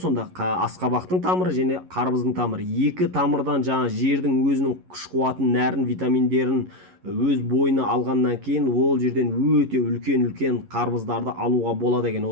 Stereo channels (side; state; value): left; late; 11 ms